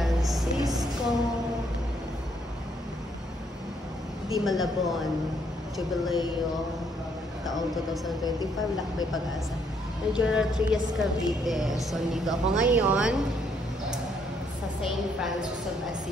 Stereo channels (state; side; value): normal; both; correlation 0.70